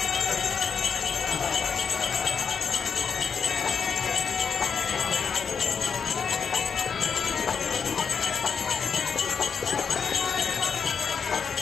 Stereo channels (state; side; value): quieter; right; 6.2 dB